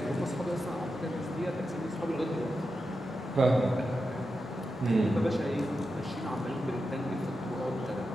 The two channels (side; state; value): both; normal; correlation 0.89